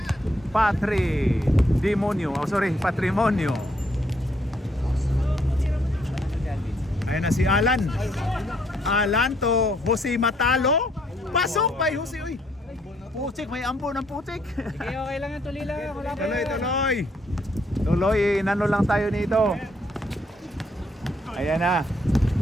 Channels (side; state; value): both; normal; correlation 0.70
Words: Patrimonio. Ayun na si Alan. Alan to Jose Matalo. Pasok by Jose. Uy, putik. May ampo ng putik. Okay, okay lang yan. Tuloy lang. Wala pa yan. Tuloy, inano lang tayo nito. Ayan na.